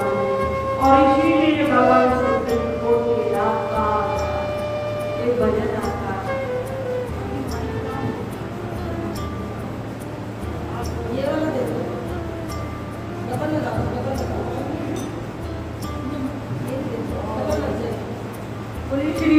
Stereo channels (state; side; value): identical; both; correlation 1.00